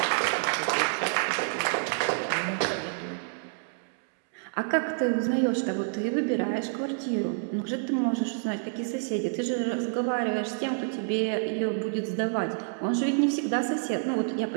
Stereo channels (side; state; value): left; silent; digital silence